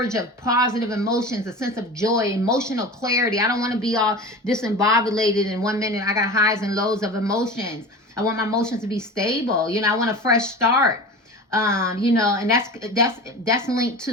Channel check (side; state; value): both; normal; correlation 0.33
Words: of positive emotions, a sense of joy, emotional clarity. I don't want to be all disembobulated in 1 minute. I got highs and lows of emotions. I want my emotions to be stable. I want a fresh start. And that's linked to